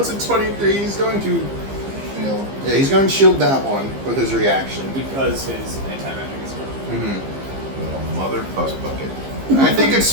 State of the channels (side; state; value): left; late; 15 ms